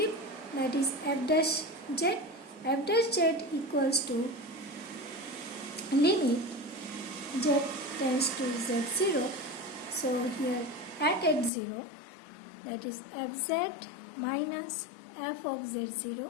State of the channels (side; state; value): right; drops out; at 11.5 s